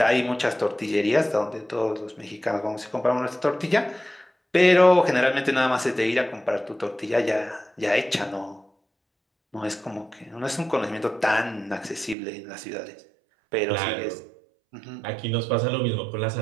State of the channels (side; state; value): left; drops out; at 12.2 s